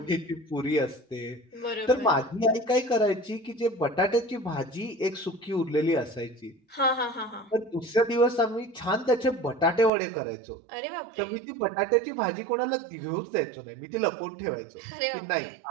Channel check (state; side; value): drops out; left; at 9.9 s